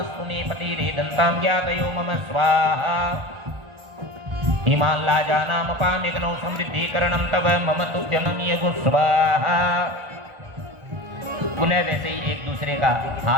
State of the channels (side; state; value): left; late; 1.4 ms